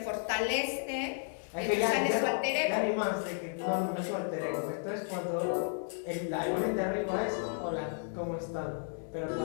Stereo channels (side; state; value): right; silent; digital silence